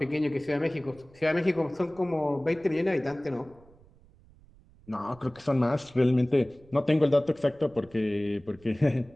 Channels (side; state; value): right; noise; rumble, 26 dB below the sound